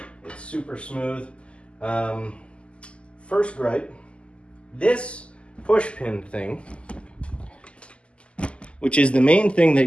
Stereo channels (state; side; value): late; right; 0.054 ms